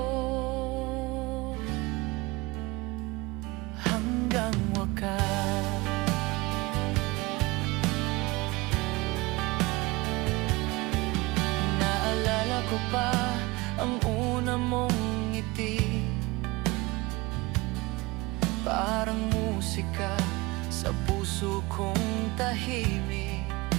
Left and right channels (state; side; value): quieter; left; 22.8 dB